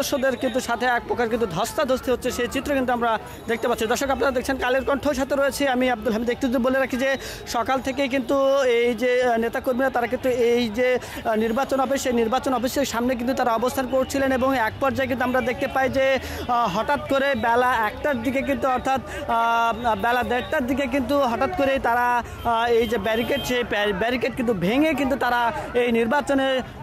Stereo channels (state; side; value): identical; both; correlation 1.00